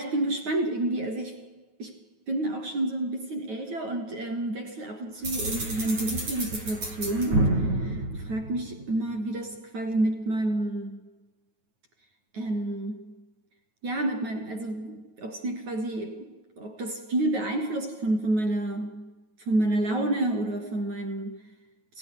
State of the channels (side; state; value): left; late; 9.3 ms